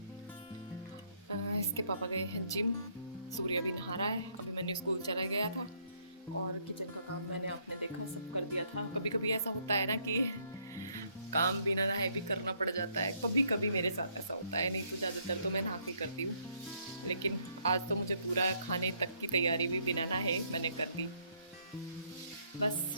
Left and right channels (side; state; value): both; inverted; correlation -0.70